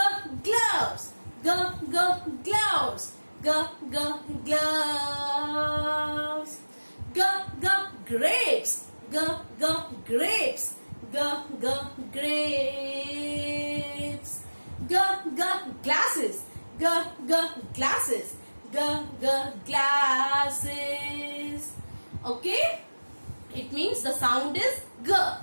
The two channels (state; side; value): inverted; both; correlation -1.00